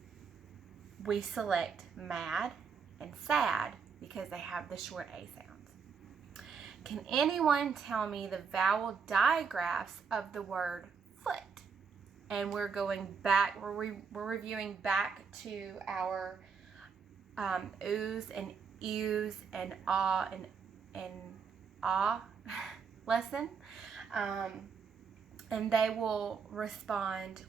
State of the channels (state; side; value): quieter; left; 5.9 dB